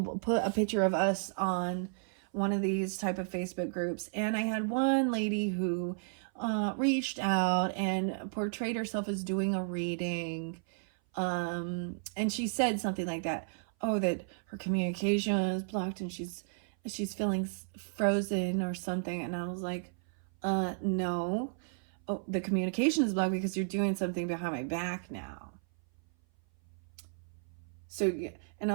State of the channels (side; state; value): left; silent; 56 dB below the other